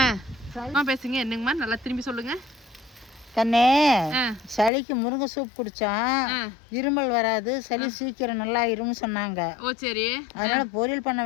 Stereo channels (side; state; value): right; drops out; at 4.7 s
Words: பேசுங்க. என்னங்கம்மா, நல்லா திரும்பி சொல்லுங்க. கண்ணே, சளிக்கு முருங்கை சூப் குடிச்சா இருமல் வராது, சளி சீக்கிரம் நல்லா இருமுன்னு சொன்னாங்க. ஓ சரி. அதனால பொரியல் பண்ண